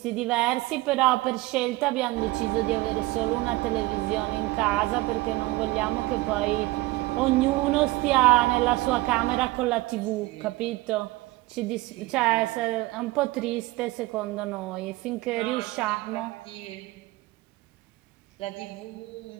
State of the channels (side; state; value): left; quieter; 19.8 dB